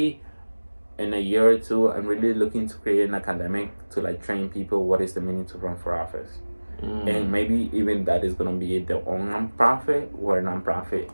a year or two, I'm really looking to create an academic to train people what is the meaning to run for office. And maybe even that is gonna be their own nonprofit or a nonprofit.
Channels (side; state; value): both; inverted; correlation -1.00